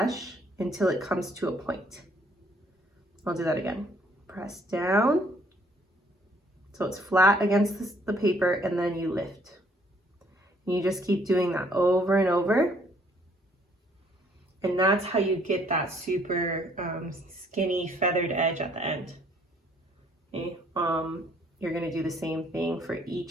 until it comes to a point. I'll do that again. Press down. So it's flat against the paper, and then you lift. And you just keep doing that over and over. And that's how you get that super skinny feathered edge at the end. Okay. You're gonna do the same thing for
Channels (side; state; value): both; normal; correlation 0.63